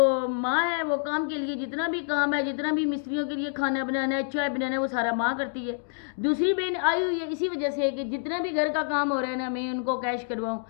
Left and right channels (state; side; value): silent; right; digital silence